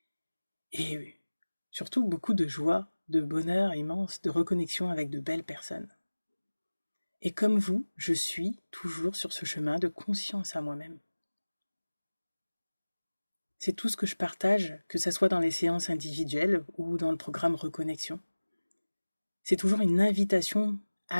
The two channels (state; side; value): inverted; both; correlation -1.00